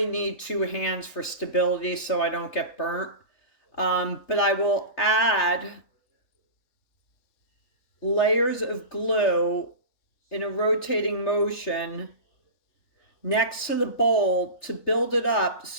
need two hands for stability so I don't get burnt. But I will add layers of glue in a rotating motion next to the bowl to build it up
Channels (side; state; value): right; late; 3.3 ms